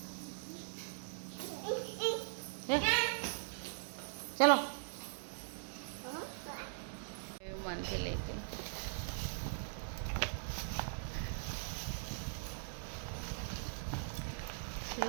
चलो मान के लेके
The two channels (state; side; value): silent; left; digital silence